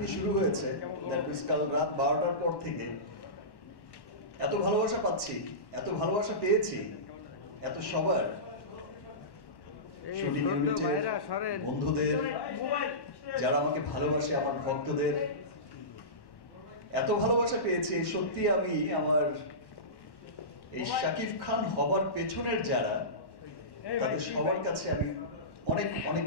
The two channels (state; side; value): late; right; 1.1 ms